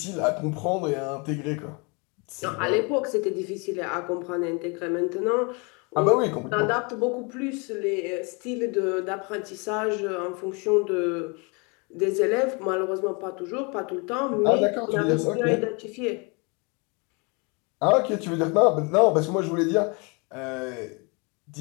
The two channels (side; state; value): right; quieter; 31.5 dB